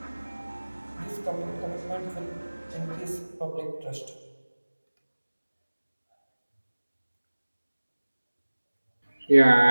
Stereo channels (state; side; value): inverted; both; correlation -1.00